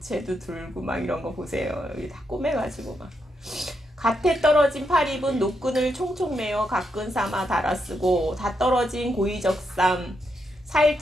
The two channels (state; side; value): normal; both; correlation 0.82